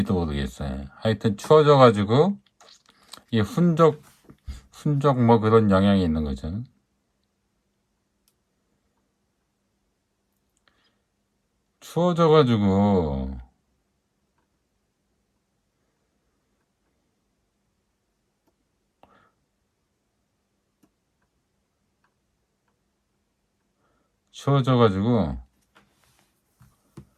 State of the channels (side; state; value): both; identical; correlation 1.00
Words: 모르겠어요. 하여튼 추워져가지고 이 훈적 뭐 그런 영향이 있는 거죠. 추워져가지고